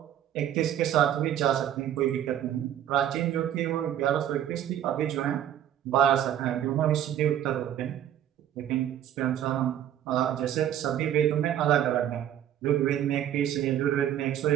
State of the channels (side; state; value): left; quieter; 10.8 dB